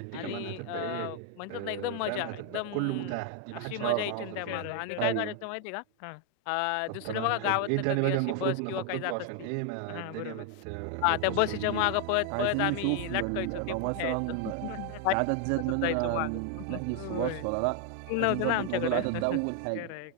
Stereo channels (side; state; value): both; different; correlation 0.01